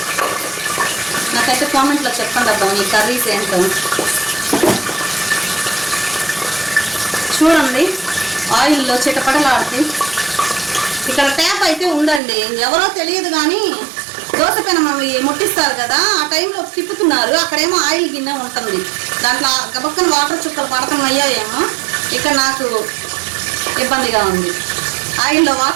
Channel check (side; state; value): left; drops out; at 12.2 s